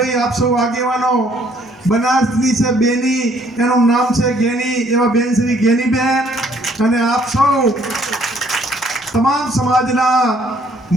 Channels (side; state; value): both; normal; correlation 0.63